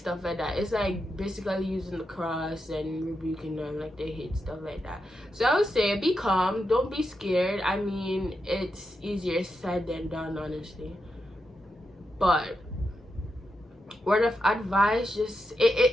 like that. It's like basically using the cross and rebuking them, like they hate stuff like that. So I would say, be calm, don't be scared. I mean, it's easier said than done, honestly. But word of advice, just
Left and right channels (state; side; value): normal; both; correlation 0.86